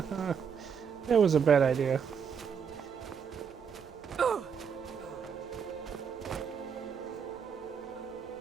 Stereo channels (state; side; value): quieter; left; 6.8 dB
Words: That was a bad idea.